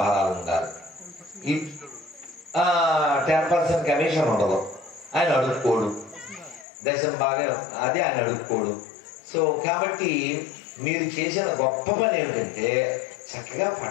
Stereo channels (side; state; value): right; drops out; at 6.7 s